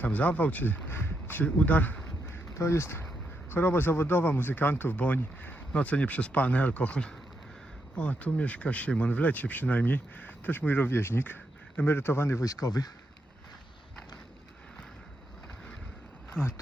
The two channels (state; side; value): normal; both; correlation 0.82